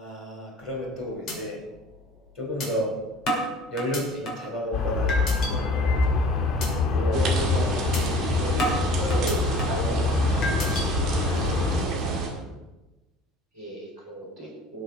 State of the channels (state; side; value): normal; both; correlation 0.47